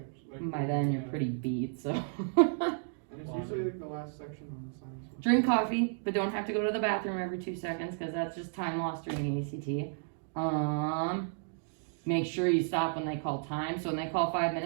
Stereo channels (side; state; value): left; silent; digital silence